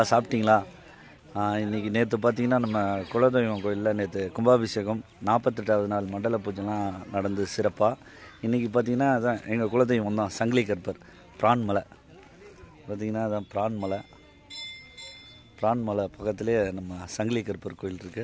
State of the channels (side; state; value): both; identical; correlation 1.00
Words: சாப்பிட்டீங்களா? இன்றைக்கி நேற்று பார்த்தீங்கன்னா நம்ம குலதெய்வம் கோயிலில் நேற்று கும்பாபிஷேகம் 48வது நாள் மண்டல பூஜைலாம் நடந்து சிறப்பாக. இன்றைக்கி பார்த்திங்கன்னா அதான் எங்கள் குலதெய்வம் தான் சங்கிலி கற்பர் பிரான்மலை. பார்த்திங்கன்னா அதான் பிரான்மலை பக்கத்துலேயே நம்ம சங்கிலி கற்பர் கோயில்